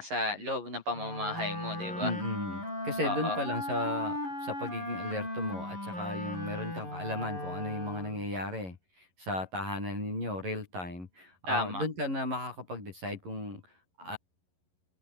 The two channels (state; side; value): late; left; 11 ms